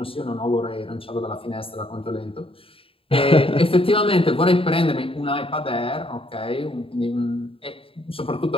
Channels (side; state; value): right; late; 0.27 ms